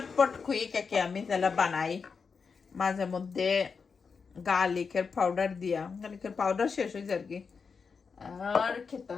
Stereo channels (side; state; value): right; quieter; 5.4 dB